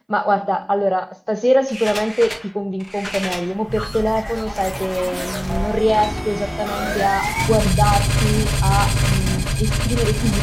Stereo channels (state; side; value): identical; both; correlation 1.00